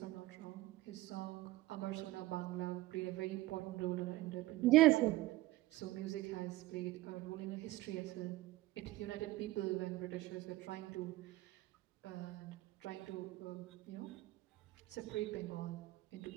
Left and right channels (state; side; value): quieter; left; 17.9 dB